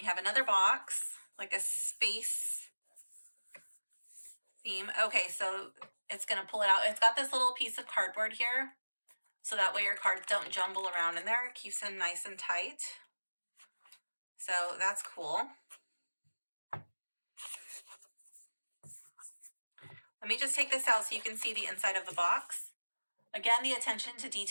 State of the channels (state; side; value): inverted; both; correlation -1.00